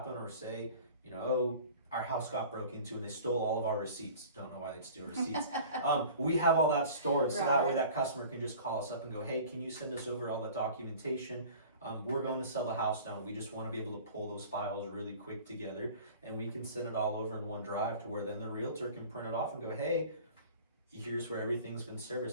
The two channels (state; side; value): inverted; both; correlation -0.44